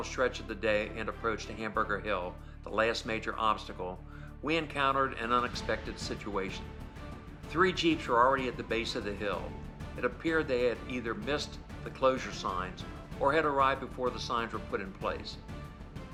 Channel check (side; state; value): both; identical; correlation 1.00